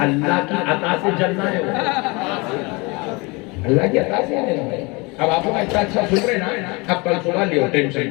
اللہ کی عطا سے جلنا ہے۔ اللہ کی عطا سے ہے میرے بھائی. اب آپ لوگ اتنا اچھا سن رہے نا, اب کل صبح لیو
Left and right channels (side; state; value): right; quieter; 26.9 dB